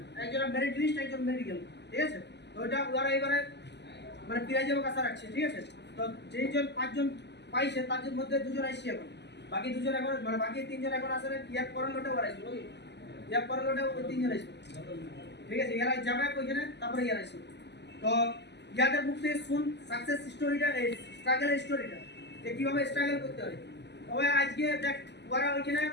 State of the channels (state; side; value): late; right; 0.50 ms